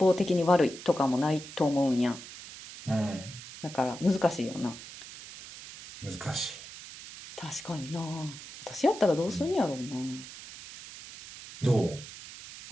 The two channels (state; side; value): noise; right; hiss, 14 dB below the sound